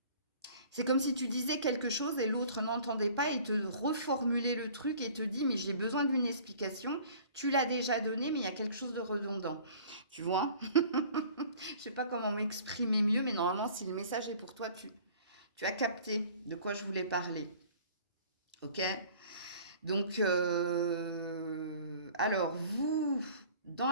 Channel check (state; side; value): inverted; both; correlation -0.49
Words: C'est comme si tu disais quelque chose et l'autre n'entendait pas et te reformulait le truc et te dit mais j'ai besoin d'une explication, tu l'as déjà donné mais il y a quelque chose de redondant. Tu vois? Je sais pas comment m'exprimer mieux, mais normalement si le message est pour toi, tu as capté de quoi je voulais parler. Ok? Donc, alors vous,